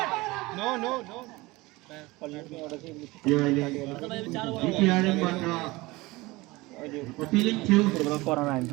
अपीलिङ थियो कोरोना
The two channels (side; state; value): left; quieter; 21.5 dB